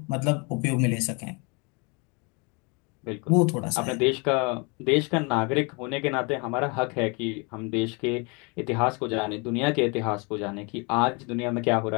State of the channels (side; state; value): right; quieter; 31.0 dB